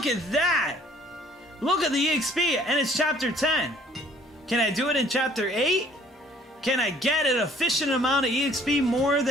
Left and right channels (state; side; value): normal; both; correlation 0.57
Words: at that! Look at the EXP, and it's chapter 10. Can I do it in chapter 8? Can I get an efficient amount of EXP more